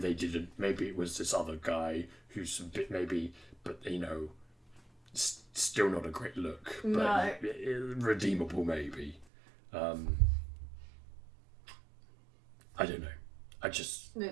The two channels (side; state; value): left; drops out; at 9.2 s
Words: didn't. Maybe it was this other guy who's a bit but you know, still not a great look, but No. redeemable maybe. I don't know.